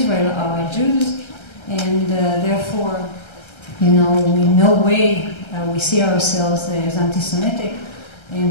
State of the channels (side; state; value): right; late; 1.3 ms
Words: are Jews, and therefore, in no way we see ourselves as anti-Semitic,